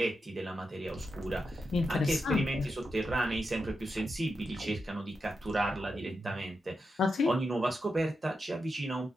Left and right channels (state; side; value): normal; both; correlation 0.87